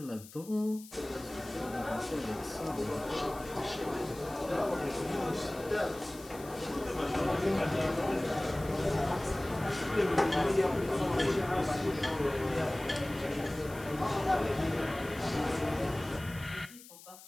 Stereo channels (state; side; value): noise; left; hiss, 18 dB below the sound